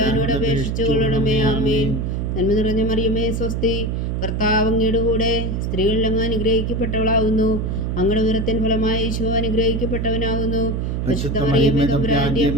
അപേക്ഷിച്ചുകൊള്ളണമേ. ആമേൻ. നന്മ നിറഞ്ഞ മറിയമേ സ്വസ്തി, കർത്താവ് അങ്ങയുടെ കൂടെ സ്ത്രീകളിൽ അങ്ങ് അനുഗ്രഹിക്കപ്പെട്ടവളാവുന്നു. അങ്ങയുടെ ഉദരത്തിൻ ഫലമായി ഈശോ അനുഗ്രഹിക്കപ്പെട്ടവനാവുന്നു. പരിശുദ്ധ മറിയമേ തമ്പുരാന്റെ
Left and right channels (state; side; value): noise; right; hum, 1 dB below the sound